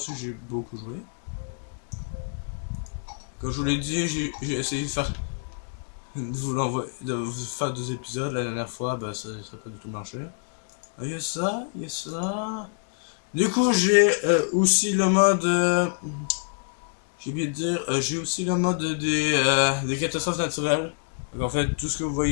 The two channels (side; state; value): right; silent; digital silence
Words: j'ai beaucoup joué. Comme je vous l'ai dit, j'ai essayé de vous faire 2 épisodes la dernière fois, bah ça n'a pas du tout marché. Il y a ça, il y a ça. Du coup, j'ai aussi le mode. J'ai oublié de dire, j'ai aussi le mode des catastrophes naturelles. Donc, en fait, tout ce que vous